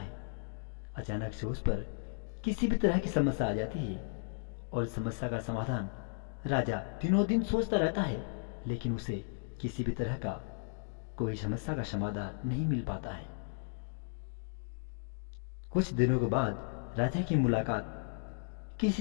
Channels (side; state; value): right; silent; digital silence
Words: अचानक से उस पर किसी भी तरह की समस्या आ जाती है और इस समस्या का समाधान राजा दिनों दिन सोचता रहता है, लेकिन उसे किसी भी तरह का कोई समस्या का समाधान नहीं मिल पाता है। कुछ दिनों के बाद राजा की मुलाकात